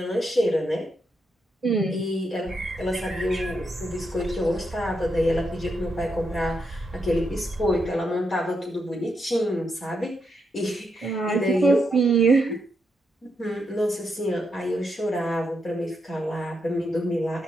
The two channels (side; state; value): both; normal; correlation 0.82